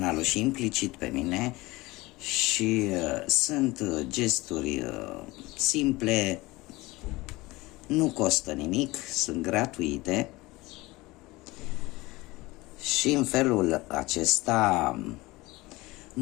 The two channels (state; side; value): quieter; right; 21.2 dB